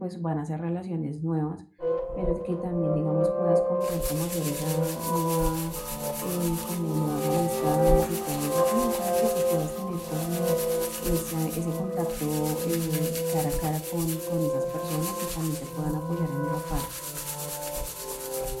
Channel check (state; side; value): identical; both; correlation 1.00